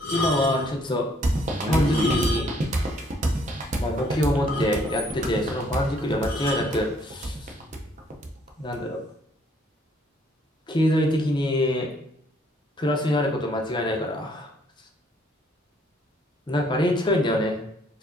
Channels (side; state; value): both; normal; correlation 0.65